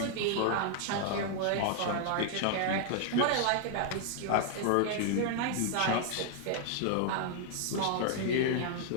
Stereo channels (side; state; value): both; different; correlation 0.00